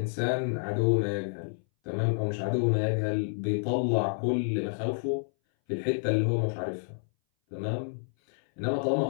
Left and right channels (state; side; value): silent; right; 59 dB below the other